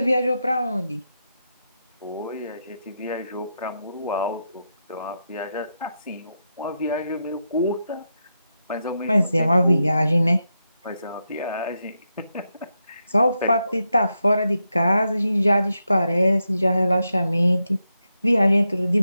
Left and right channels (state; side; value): inverted; both; correlation -0.86